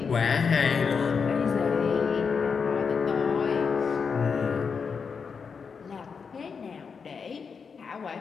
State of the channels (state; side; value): quieter; right; 5.8 dB